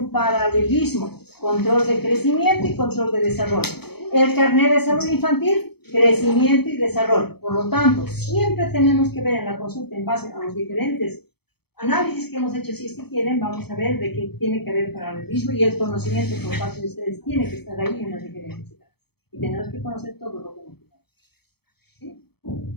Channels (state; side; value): late; right; 0.96 ms